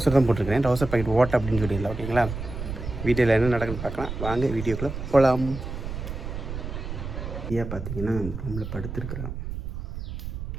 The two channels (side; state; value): right; noise; rumble, 7 dB below the sound